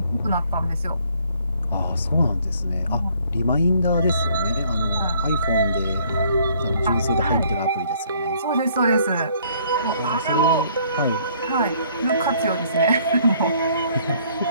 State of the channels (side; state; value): both; inverted; correlation -0.62